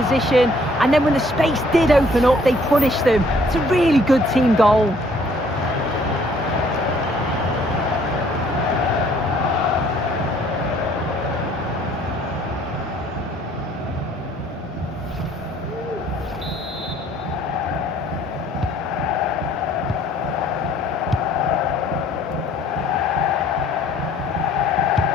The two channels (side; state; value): both; normal; correlation 0.60